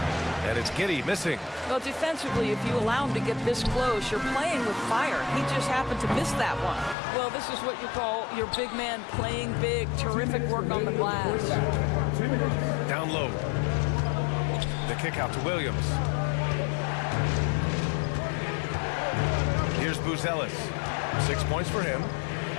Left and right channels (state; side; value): drops out; right; at 7.0 s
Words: And it's Giddey missing. Well, defensively, if you allow him to get this close, you're playing with fire. He just happened to miss that one. Well, this is what you call your big man playing big. Terrific work on the glass. Down low. The kick out to Williams. Here's Buzelis. 6 points for him.